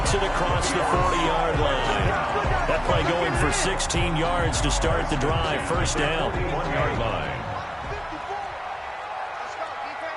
it across the 40-yard line. That play going for 16 yards to start the drive. 1st down. 1-yard line.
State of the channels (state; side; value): identical; both; correlation 1.00